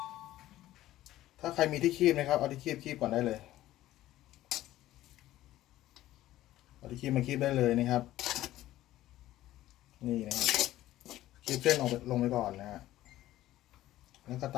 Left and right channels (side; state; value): right; quieter; 14.8 dB